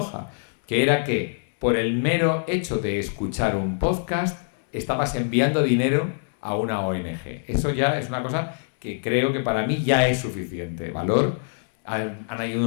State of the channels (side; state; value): right; silent; digital silence